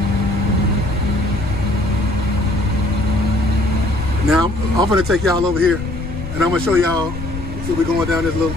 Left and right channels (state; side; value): noise; left; rumble, 9 dB below the sound